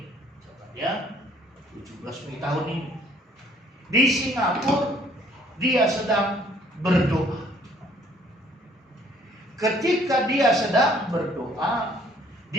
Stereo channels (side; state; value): both; normal; correlation 0.61